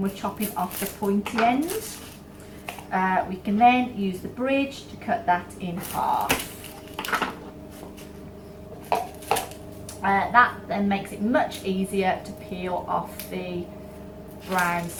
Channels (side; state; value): both; identical; correlation 1.00